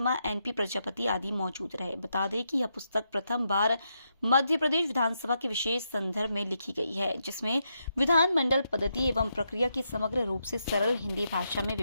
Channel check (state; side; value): inverted; both; correlation -0.82